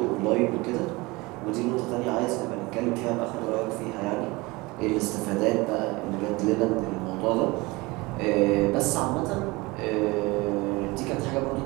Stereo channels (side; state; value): left; quieter; 23.3 dB